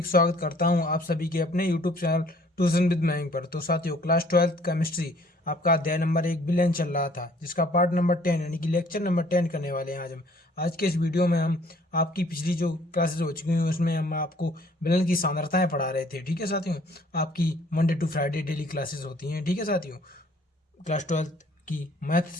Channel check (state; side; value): normal; both; correlation 0.58